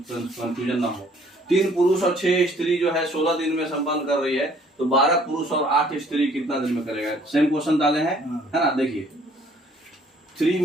कंफ्यूजन ना हो। 3 पुरुष और 6 स्त्री जो है 16 दिन में संपन्न कर रही है, तो 12 पुरुष और 8 स्त्री कितना दिन में करेगा? सेम क्वेश्चन डाले हैं, है ना। देखिए 3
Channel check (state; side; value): normal; both; correlation 0.59